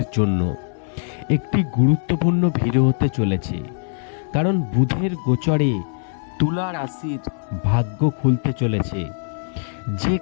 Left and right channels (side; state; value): right; silent; 59 dB below the other